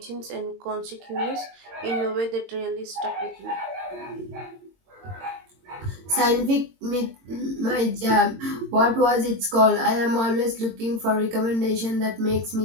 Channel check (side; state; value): left; late; 22 ms